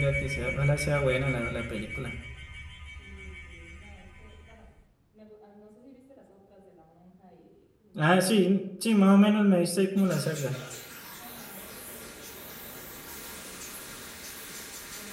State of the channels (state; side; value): identical; both; correlation 1.00